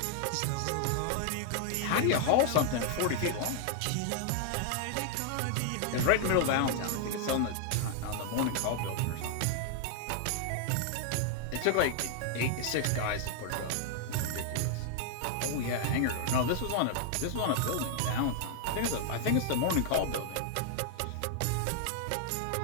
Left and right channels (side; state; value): both; different; correlation 0.00